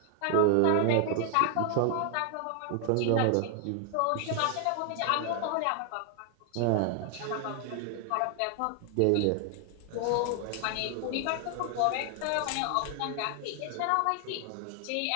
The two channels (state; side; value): different; both; correlation 0.00